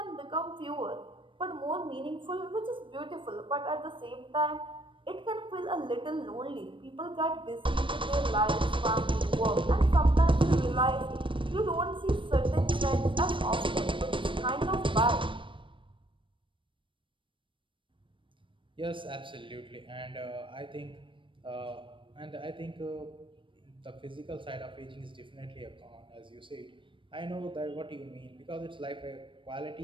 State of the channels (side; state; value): left; late; 0.25 ms